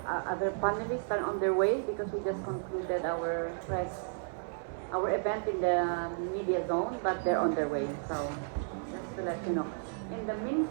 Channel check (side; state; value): left; silent; digital silence